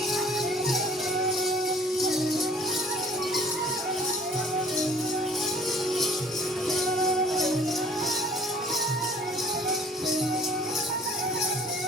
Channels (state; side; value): normal; both; correlation 0.54